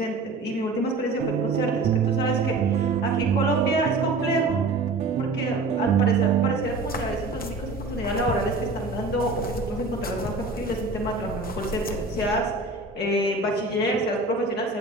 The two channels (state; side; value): quieter; left; 3.3 dB